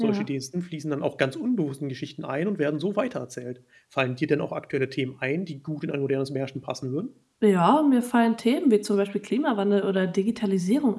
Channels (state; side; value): identical; both; correlation 1.00